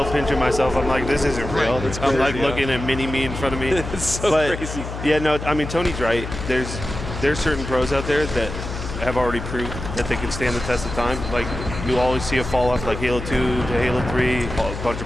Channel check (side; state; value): left; noise; hum, 7 dB below the sound